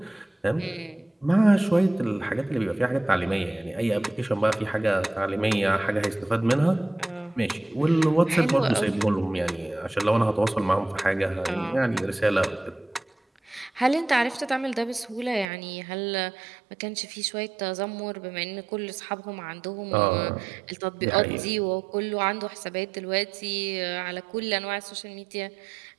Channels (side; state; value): left; drops out; at 15.5 s